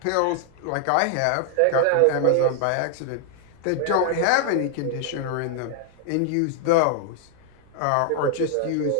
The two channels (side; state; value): both; different; correlation 0.00